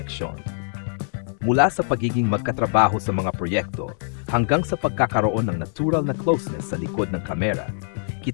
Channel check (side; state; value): right; silent; 63 dB below the other